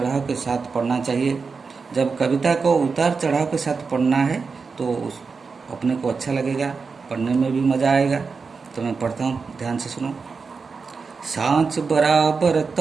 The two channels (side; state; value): left; quieter; 4.9 dB